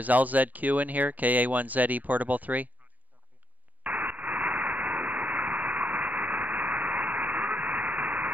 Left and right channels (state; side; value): late; left; 0.079 ms